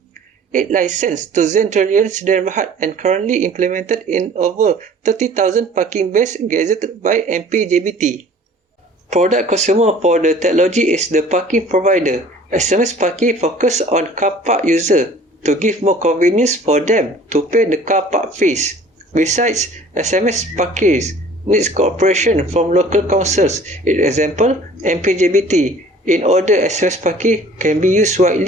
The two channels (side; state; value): both; normal; correlation 0.49